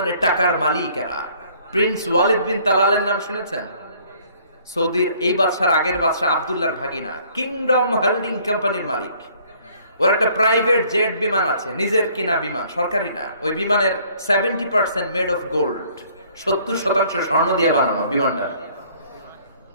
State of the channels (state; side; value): inverted; both; correlation -0.59